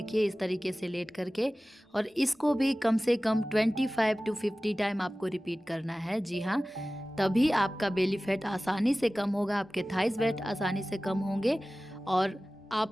इस तरीके से लेट करके, और इसको भी कम से कम 25 to 50 टाइम आपको रिपीट करना है। जी हाँ, तभी आपका बेली फैट आसानी से कम होगा, आपके थाइस वेट आसानी से कम होंगे। और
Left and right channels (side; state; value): both; normal; correlation 0.97